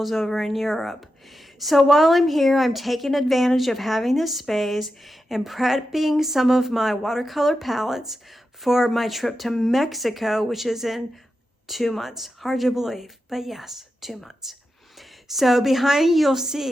over in Europe. So while I'm here, I'm taking advantage of having this space and prepping some of my watercolor palettes for my trip to Mexico, which is in 2 months. Hard to believe, but yes, 2 months. So behind you'll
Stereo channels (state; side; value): normal; both; correlation 0.90